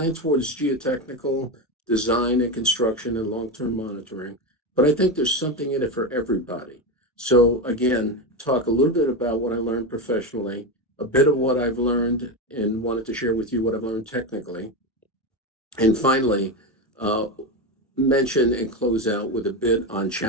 towards geotechnical design and construction and long-term monitoring, but I think there's something in it for everybody. So again, talk a little bit about what I learned professionally, a bit of what I've learned and wanted to share with you what I've learned technically. And finally, mention and close out with a bit on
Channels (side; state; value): both; normal; correlation 0.15